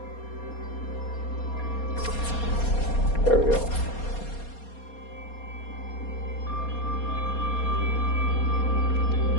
There we go.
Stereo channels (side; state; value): right; late; 4.2 ms